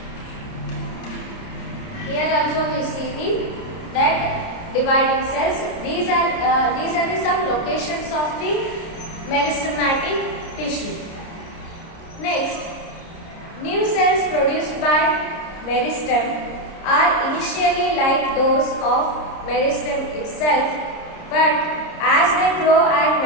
see the that dividing cells. These are the some locations of the meristematic tissue. Next, new cells produced by meristem are initially like those of meristem itself, but as they grow and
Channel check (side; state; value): right; late; 30 ms